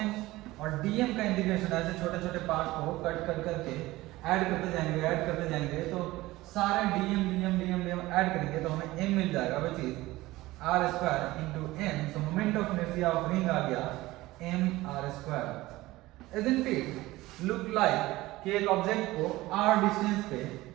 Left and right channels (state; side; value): quieter; left; 18.5 dB